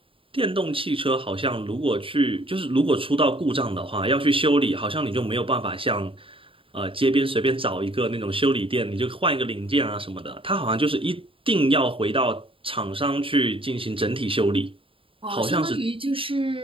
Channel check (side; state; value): left; late; 0.26 ms